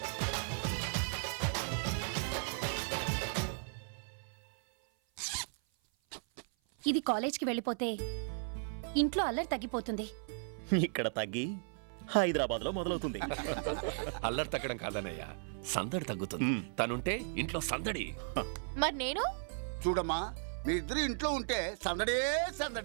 ఇది కాలేజ్కి వెళ్ళిపోతే ఇంట్లో అల్లరి తగ్గిపోతుంది. ఇక్కడ తగ్గి హైదరాబాద్ లో మొదలవుతుంది. అల్లరి తగ్గడం కాదన్నయ్యా, సందడి తగ్గుతుంది. తనుంటే ఇంట్లో సందడి. మరి నేను చూడమ్మా, మీ ఇద్దరు ఇంట్లో ఉంటే సందడే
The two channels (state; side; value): silent; left; 54 dB below the other